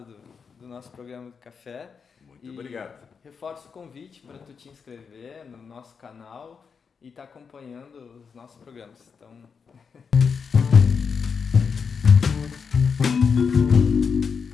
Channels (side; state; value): right; quieter; 5.9 dB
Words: do nosso programa do Café. Muito obrigado. Reforço o convite para tu te inscrever no nosso canal e estar acompanhando os nossos programas. Então...